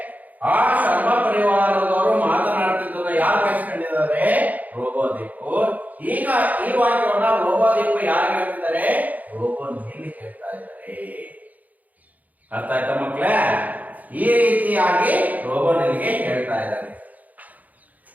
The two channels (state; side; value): late; left; 0.078 ms